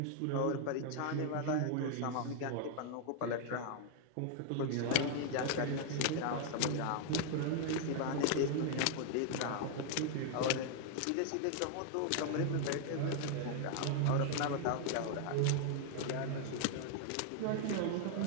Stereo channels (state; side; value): different; both; correlation 0.00